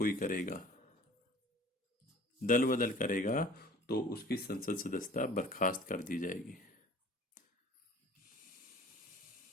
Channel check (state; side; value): normal; both; correlation 0.48